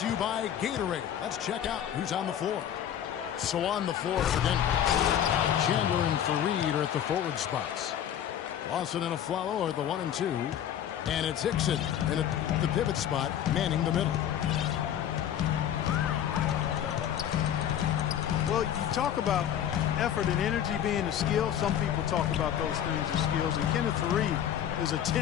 you by Gatorade. Let's check out who's on the floor. So on the floor for Denver, Chandler and Fareed are at the forward spots. Lawson and Aflalo are the 1 and 2. And it's Hickson in the pivot spot, manning the middle. Well, you talk about effort and energy being a skill. Some people talk about those things as skills. And Kenneth Fareed is a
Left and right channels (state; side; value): quieter; right; 10.1 dB